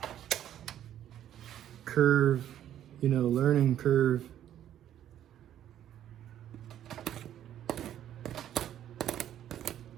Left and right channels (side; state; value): left; quieter; 11.1 dB